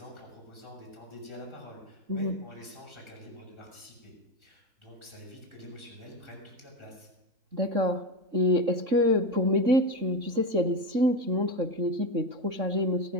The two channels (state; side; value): late; left; 3.6 ms